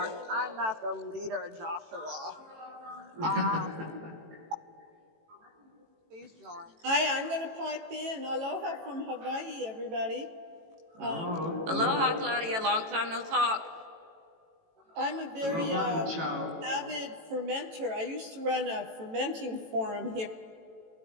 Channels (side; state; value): left; late; 18 ms